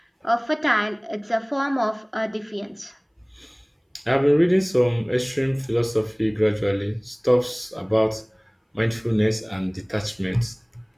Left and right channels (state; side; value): identical; both; correlation 1.00